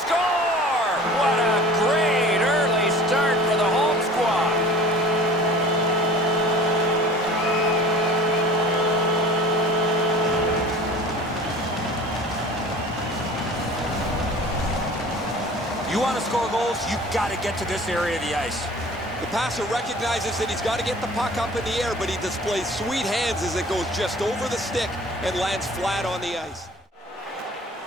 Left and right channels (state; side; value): normal; both; correlation 0.44